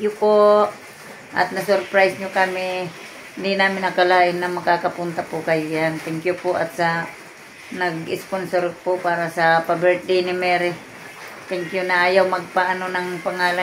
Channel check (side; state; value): both; identical; correlation 1.00